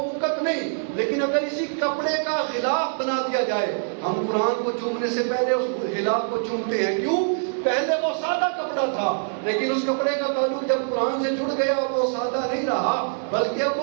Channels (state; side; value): silent; left; digital silence